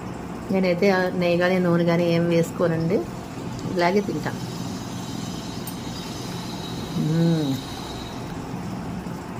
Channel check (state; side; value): identical; both; correlation 1.00